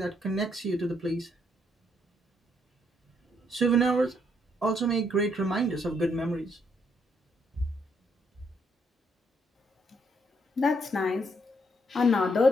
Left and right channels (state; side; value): normal; both; correlation 0.73